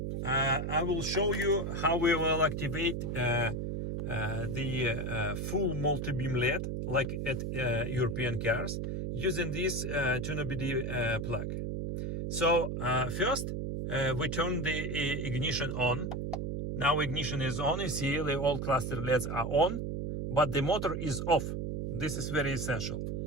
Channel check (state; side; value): noise; right; hum, 2 dB below the sound